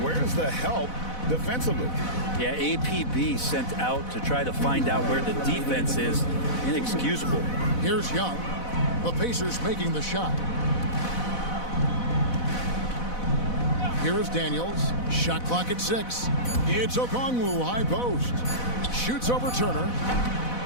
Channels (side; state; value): right; late; 4.0 ms